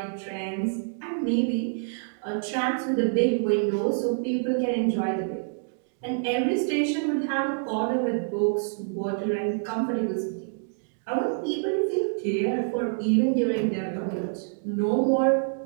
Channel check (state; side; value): silent; left; digital silence